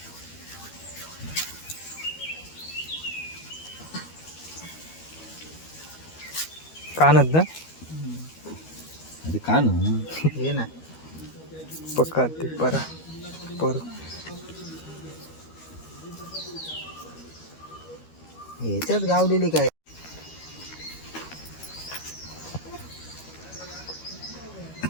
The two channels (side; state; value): right; late; 13 ms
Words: कानत ना अरे का ना हे ना पक्का ते परा पर ह्याच्यात गावलेली काय